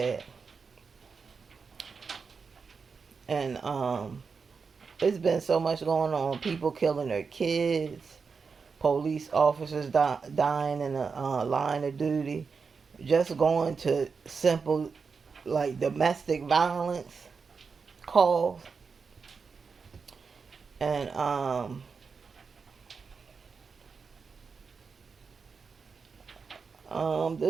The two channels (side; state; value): left; quieter; 5.2 dB